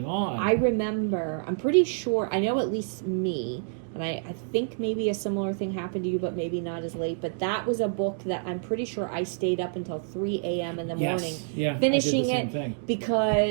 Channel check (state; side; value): silent; left; digital silence